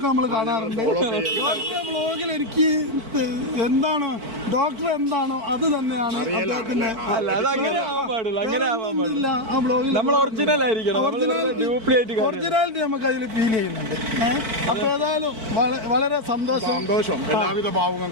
നമ്മൾ കാണാറുണ്ട്. ഡോക്ടറെ വ്ളോഗിൽ എനിക്ക് എന്താണ് ഡോക്ടർ എന്താണോ അത് തന്നെയാണ് അദ്ദേഹത്തിന്റെ. ഒറിജിനാലിറ്റി നമുക്ക് അതിൽ ഫീൽ ചെയ്യുന്നുണ്ട്. അപ്പൊ ഏതായാലും വളരെ സന്തോഷം. എല്ലാവിധ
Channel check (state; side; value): late; left; 4.5 ms